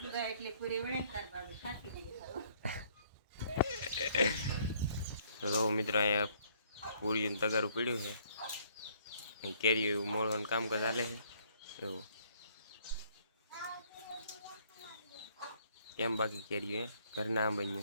તો મિત્રો અહીંયા પૂરી તગારું પીડ્યું છે, કેરી મોળવાનું કામકાજ ચાલે છે. એવું કેમ બાકી કેરી ઘરના આમ બન્યું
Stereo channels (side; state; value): both; inverted; correlation -0.63